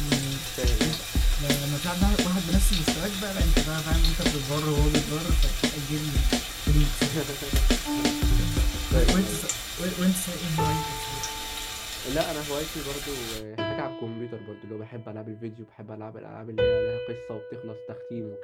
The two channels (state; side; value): identical; both; correlation 1.00